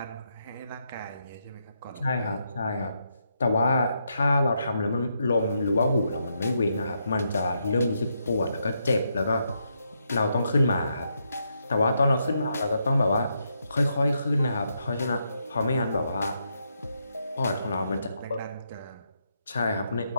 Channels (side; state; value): both; inverted; correlation -0.80